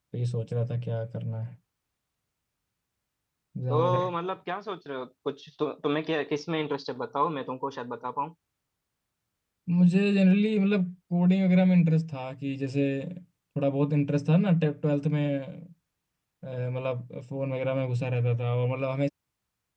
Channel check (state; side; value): identical; both; correlation 1.00